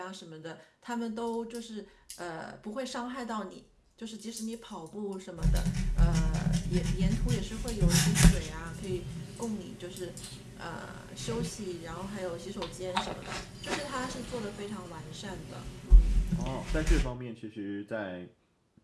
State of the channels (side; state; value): both; identical; correlation 1.00